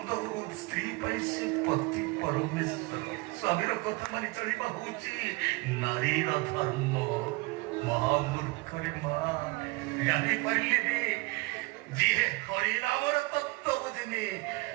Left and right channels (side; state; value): left; quieter; 24.4 dB